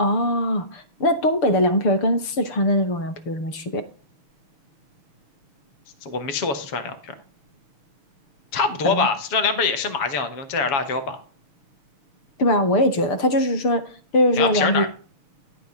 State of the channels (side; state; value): right; late; 6.8 ms